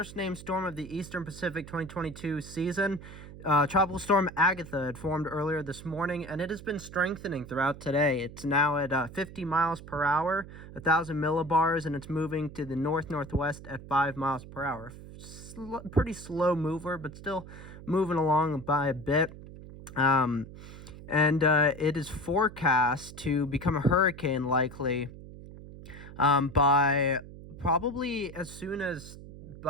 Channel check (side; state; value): right; noise; hum, 15 dB below the sound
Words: named storm of the Eastern Pacific 2022 season. Tropical Storm Agatha had formed earlier this morning, and it has been strengthening throughout today. It's now at 50 miles per hour, 1,000 millibars, and it's moving to the north-northwest at 5 miles per hour. Pretty slow mover, but still moving along by a bit. It is forecast to become a hurricane likely by probably as soon as